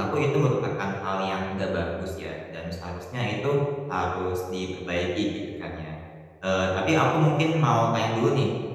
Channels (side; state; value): both; identical; correlation 1.00